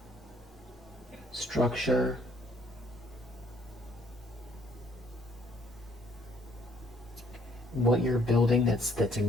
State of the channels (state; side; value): normal; both; correlation 0.64